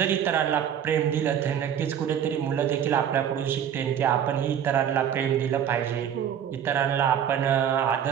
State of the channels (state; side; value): quieter; left; 9.1 dB